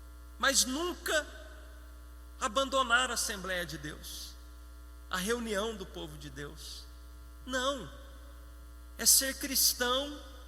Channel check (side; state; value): both; identical; correlation 1.00